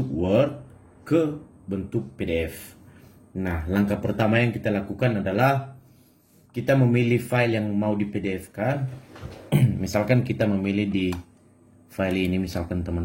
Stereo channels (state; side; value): identical; both; correlation 1.00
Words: Word ke bentuk PDF. Nah, langkah pertama yang kita lakukan adalah kita memilih file yang mau di PDF-kan. Misalkan kita memilih di file ini, misalkan